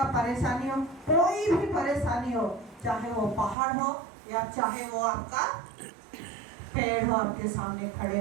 परेशानी हो, कोई भी परेशानी हो, चाहे वो पहाड़ हो या चाहे वो आपका पेड़ हो आपके सामने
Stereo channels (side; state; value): left; drops out; at 3.6 s